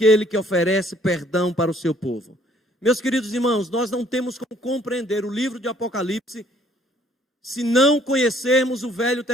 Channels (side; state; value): both; normal; correlation 0.61